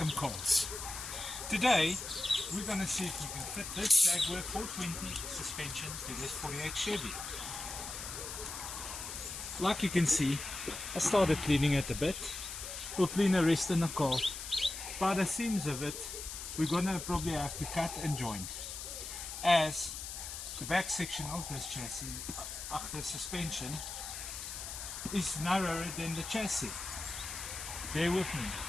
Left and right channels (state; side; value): noise; left; hiss, 7 dB below the sound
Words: Cars. Today we're going to see if we can fit this Jaguar 420 suspension to this 48 Chevy. Like you can see, I started cleaning it a bit. We'll clean the rest in the car. By the seams of it, we're going to probably have to cut and join, as the back section of this chassis, after suspension, is narrower than the chassis. Bear with me.